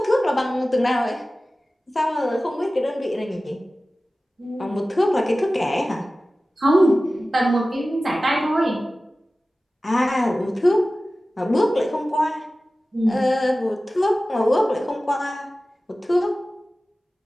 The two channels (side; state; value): both; normal; correlation 0.96